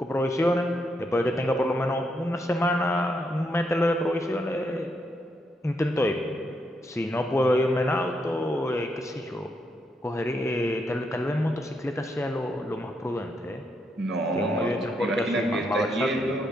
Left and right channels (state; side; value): normal; both; correlation 0.79